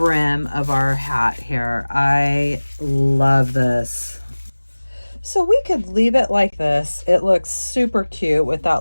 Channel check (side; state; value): both; inverted; correlation -1.00